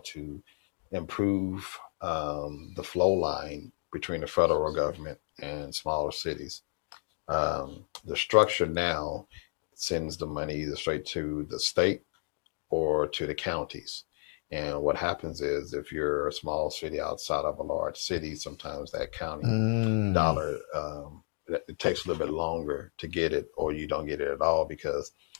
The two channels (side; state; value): right; silent; digital silence